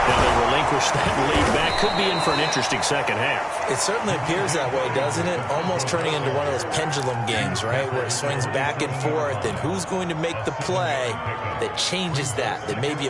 Now they relinquish that lead back. Could be in for an interesting second half. It certainly appears that way, doesn't it? Almost turning into one of those pendulum games, right? Where it swings back and forth, and who's going to make the play that changes that maybe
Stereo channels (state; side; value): identical; both; correlation 1.00